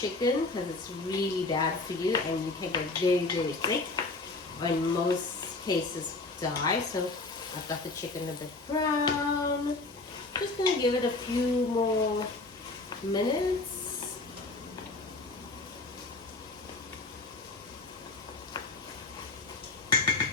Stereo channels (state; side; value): quieter; right; 3.4 dB